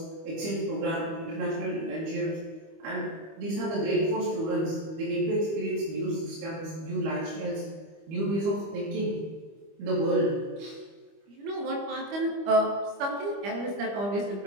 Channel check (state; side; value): late; left; 25 ms